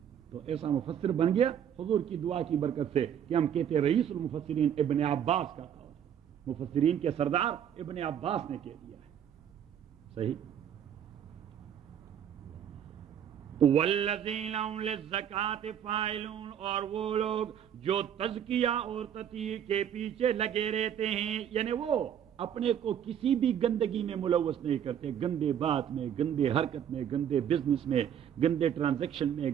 تو ایسا مفسر بن گیا حضور کی دعا کی برکت سے کہ ہم کہتے رئیس المفسرین ابن عباس کا تھا. مفسرین کے سردار ابن عباس نے کہہ دیا ہے. صحیح. والذین هم للزکاۃ فاعلون، اور وہ لوگ جو تزکیہ اور تطہیر کے پیچھے لگے رہتے ہیں، یعنی وہ اپنے کو کسی بھی گندگی میں ملوث نہیں کرتے، گندے بات میں، گندے حرکت میں، گندے بزنس میں، گندے ٹرانزیکشن میں،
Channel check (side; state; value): left; quieter; 9.3 dB